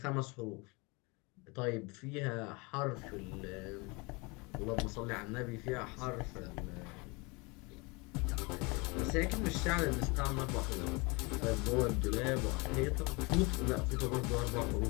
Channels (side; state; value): right; quieter; 27.8 dB